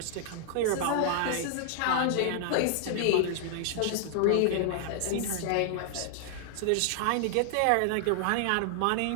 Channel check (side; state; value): both; different; correlation -0.01